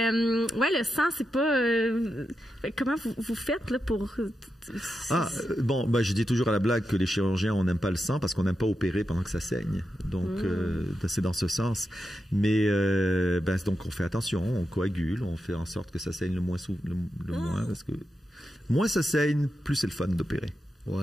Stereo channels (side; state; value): both; normal; correlation 0.88